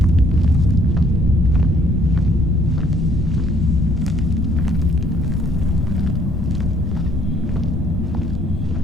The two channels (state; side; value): normal; both; correlation 0.63